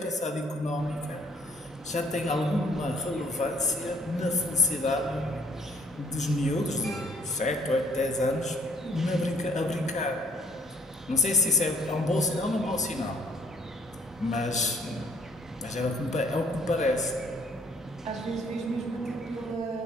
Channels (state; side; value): normal; both; correlation 0.62